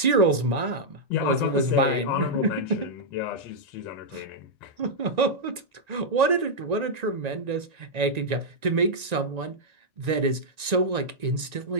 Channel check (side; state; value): left; late; 1.9 ms